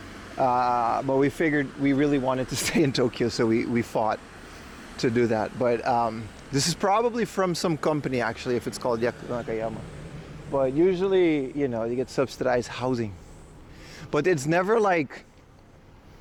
But we figured we really wanted to stay in Tokyo, so we fought to do that. But this is probably from some company, actually, if it's called Yaku Nakayama. But usually, you know, you get subsidized housing. But it's never like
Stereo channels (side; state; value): both; identical; correlation 1.00